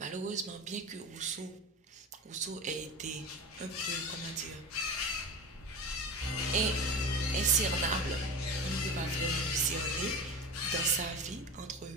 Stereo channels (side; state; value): both; normal; correlation 0.28